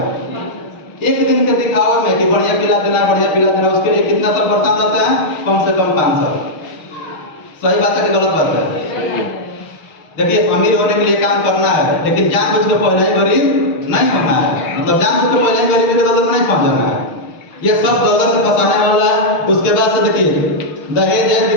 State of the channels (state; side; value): late; right; 6.5 ms